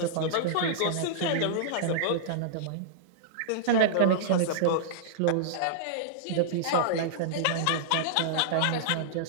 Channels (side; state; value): both; different; correlation -0.02